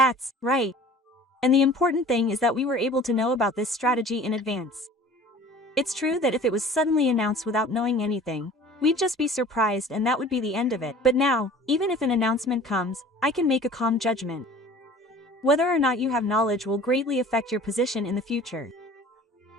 right. And the important thing is that we were able to know about this strategy in advance. It's true that if it was suddenly announced without knowing anything, we'd just be surprised and that would be the end of it. But now, even if an announcement comes, I can make a calm judgment. Whether or not you have knowledge will greatly affect your position in the future.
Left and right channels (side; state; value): both; normal; correlation 0.46